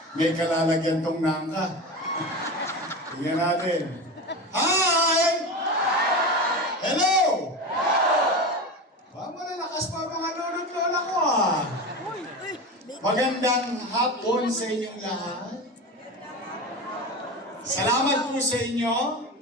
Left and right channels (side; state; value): both; normal; correlation 0.25